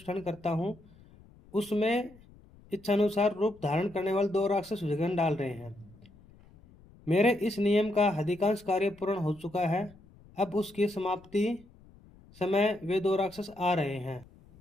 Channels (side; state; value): left; noise; rumble, 25 dB below the sound